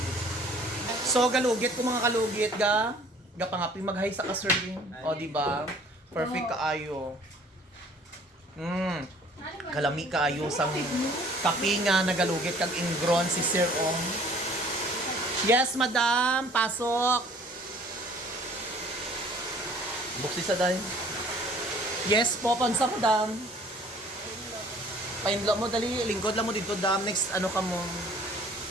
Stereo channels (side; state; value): both; normal; correlation 0.54